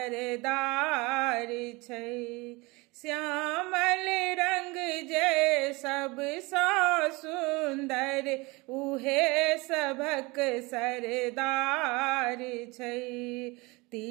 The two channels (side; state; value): left; quieter; 24.8 dB